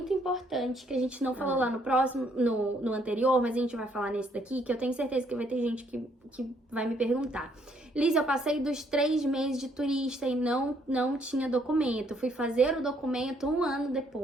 importante que a gente não falou lá no próximo, no anterior, mas a gente vai falar nesse daqui, que eu tenho certeza que vai ter gente que vai me perguntar. Liz, eu passei dos 3 meses de turista e não tinha documento. Fui fazer o documento 1 ano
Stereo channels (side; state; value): both; normal; correlation 0.68